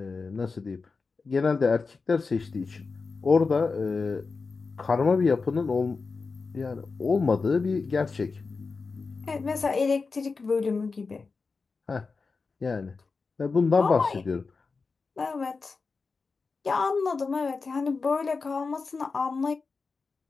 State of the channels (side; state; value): right; quieter; 4.4 dB